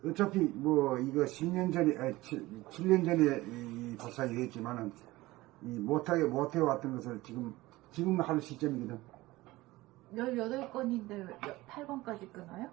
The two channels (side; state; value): left; quieter; 19.0 dB